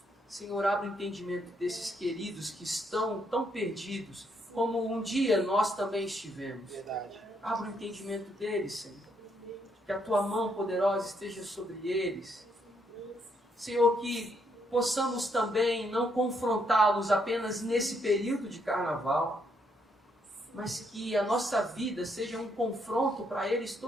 Senhor, abre o entendimento desses queridos que estão tão perdidos, como um dia nós também estivemos. Verdade. Abre o entendimento deles, Senhor. Que a Tua mão poderosa esteja sobre eles. Senhor, que possamos também não confrontá-los apenas nesse período de carnaval, mas que a nossa vida seja um confronto para eles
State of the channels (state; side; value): normal; both; correlation 0.74